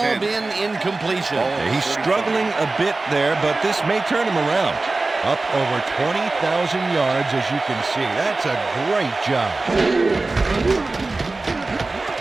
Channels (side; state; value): left; quieter; 3.3 dB